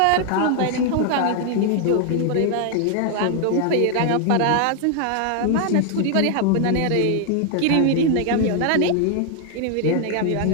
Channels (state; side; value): different; both; correlation 0.00